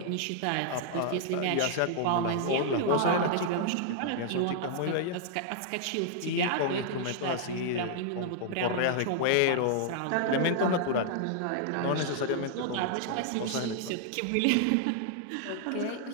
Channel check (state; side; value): different; both; correlation -0.01